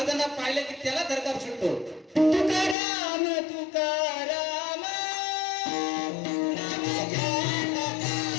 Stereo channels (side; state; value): right; drops out; at 2.8 s